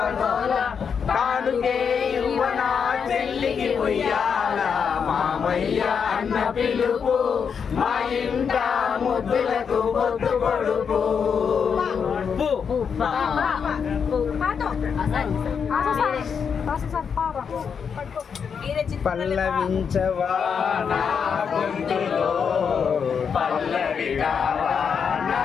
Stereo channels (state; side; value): quieter; right; 6.6 dB